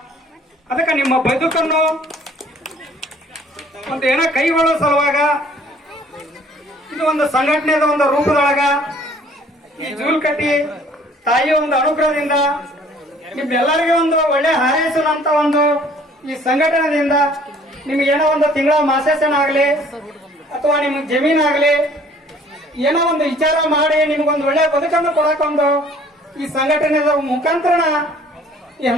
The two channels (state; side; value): normal; both; correlation 0.56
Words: ಅದಕ್ಕೆ ನಿಮ್ಮ ಬದುಕನ್ನು ಒಂದು ಏನೋ ಕೈಗೊಳ್ಳೋ ಸಲುವಾಗ ಇದು ಒಂದು ಸಂಘಟನೆದ ಒಂದು ರೂಪದೊಳಗ ಈ ಜೂಲ್ಕಟ್ಟಿ ತಾಯಿಯ ಒಂದು ಅನುಗ್ರಹದಿಂದ ನಿಮ್ಮೆಲ್ಲರಿಗೆ ಒಂದು ಒಳ್ಳೆ ಹಾರೈಸುವಂತ ಒಂದು ಈ ಸಂಘಟನೆಯಿಂದ ನಿಮ್ಗೇನೋ ಒಂದು ತಿಂಗಳ ಮಾಸಾಸನ ಆಗ್ಲಿ ಅಥವಾ ನಿಮ್ಗೆ ಜಮೀನಾಗ್ಲಿ ಏನೋ ಒಂದು ವಿಚಾರ ಮಾಡಿ ನಿಮ್ಗೊಂದು ಒಳ್ಳೆ ಬದುಕನ್ನು ಕೊಡಕೊಂದು ಈ ಸಂಘಟನೆದ ಮುಖಾಂತರ ಈ